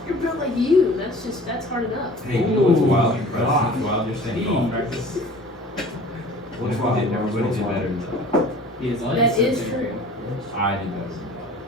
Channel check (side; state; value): both; normal; correlation 0.45